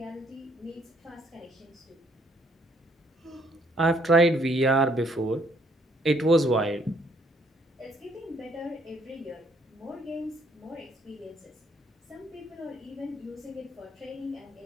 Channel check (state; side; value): normal; both; correlation 0.67